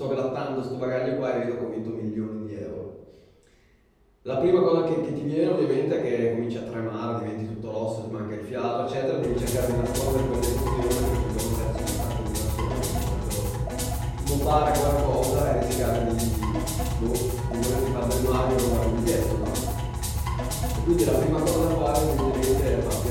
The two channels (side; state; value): both; identical; correlation 1.00